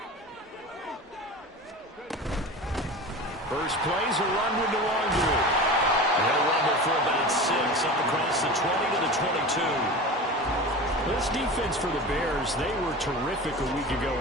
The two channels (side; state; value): both; normal; correlation 0.32